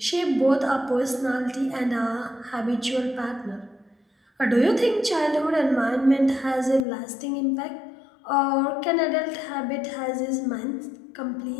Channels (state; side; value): drops out; right; at 6.9 s